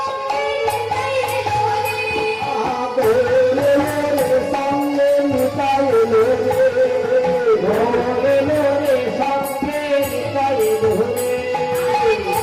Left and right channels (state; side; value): identical; both; correlation 1.00